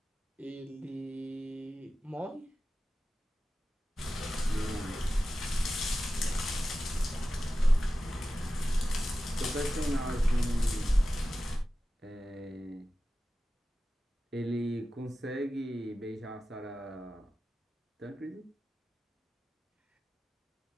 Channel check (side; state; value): both; normal; correlation 0.94